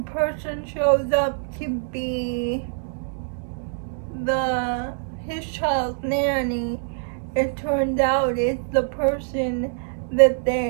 person shows up to be his child's nanny, it turns out it's the person that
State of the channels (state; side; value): silent; left; digital silence